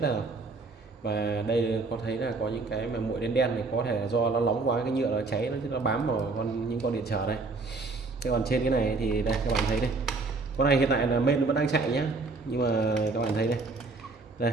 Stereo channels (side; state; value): left; quieter; 3.7 dB